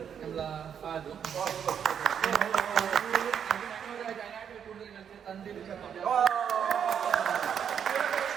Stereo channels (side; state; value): left; quieter; 8.1 dB